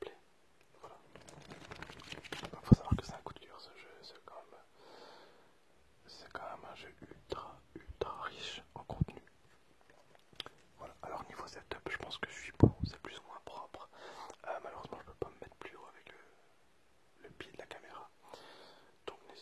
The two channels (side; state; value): both; identical; correlation 1.00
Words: Voilà. Il faut savoir que c'est un coup de cœur ce jeu, c'est quand même un jeu ultra riche en contenu. Voilà, alors niveau setup, je pense que je suis bon, c'est plus ou moins propre. Malheureusement, je peux pas me mettre plus haut avec le pied de la caméra. Donc